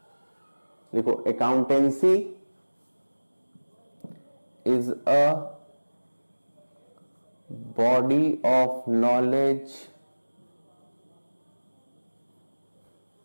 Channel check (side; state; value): both; inverted; correlation -1.00